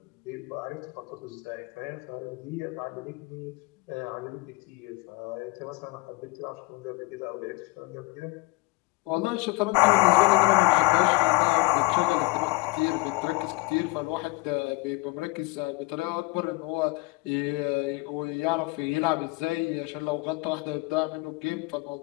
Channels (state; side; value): quieter; right; 24.7 dB